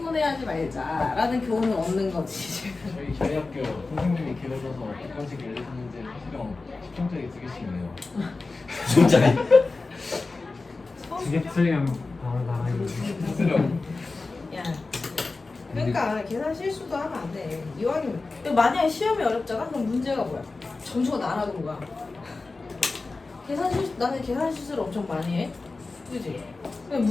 말자라는 교훈을 얻는 거지. 저희 학교 선생님이 길어져서 객관식 1, 2, 3문제 수령 10점짜리 2개씩이네요. 진짜네. 두개 틀리면 바로 나가기. 수령. 야. 그러니까 계산 실수도 하면 안 돼. 이왕이면 만약에 시험이 어렵잖아? 그럼 문제가 뭐야? 점수가 날아가는 거야. 나는 계산 실수를 엄청 많이 해. 그지? 근데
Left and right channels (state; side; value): quieter; right; 3.7 dB